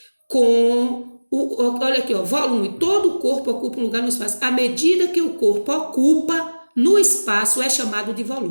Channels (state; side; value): inverted; both; correlation -1.00